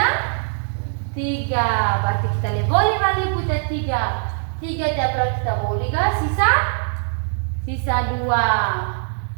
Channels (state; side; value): silent; left; 61 dB below the other